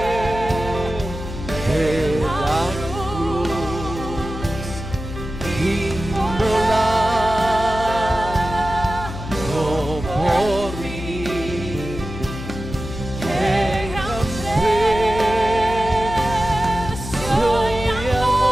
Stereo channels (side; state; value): left; noise; hum, 9 dB below the sound